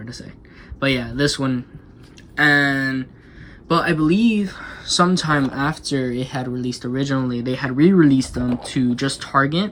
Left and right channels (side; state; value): both; identical; correlation 1.00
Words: to say, but yeah, this one. But I believe sometime after it had released originally, they had re-released them to just